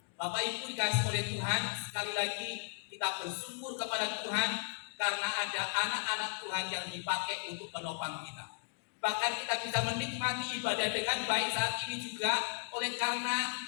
Bapak Ibu dikasihi oleh Tuhan, sekali lagi kita bersyukur kepada Tuhan karena ada anak-anak Tuhan yang dipakai untuk menopang kita. Bahkan kita bisa menikmati ibadah dengan baik saat ini juga oleh karena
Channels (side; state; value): right; silent; digital silence